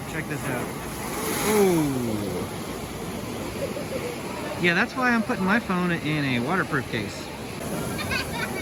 Check this out. Ooh. Yeah, that's why I'm putting my phone in a waterproof case.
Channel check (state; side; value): identical; both; correlation 1.00